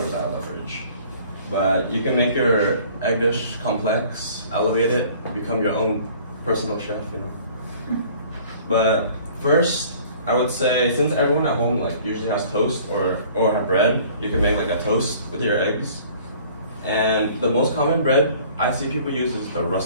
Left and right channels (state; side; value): inverted; both; correlation -0.52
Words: out of the fridge. But you can make your egg dish complex, elevate it, become your own personal chef, you know. But first, I would say, since everyone at home like usually has toast or have bread, you can make like a toast with your eggs. And the most common bread I see people use is the